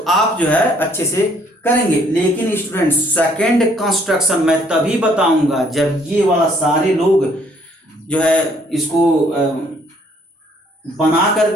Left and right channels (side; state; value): both; normal; correlation 0.64